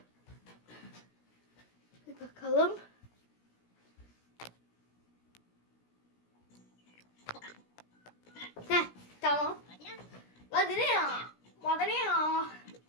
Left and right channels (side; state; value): right; late; 17 ms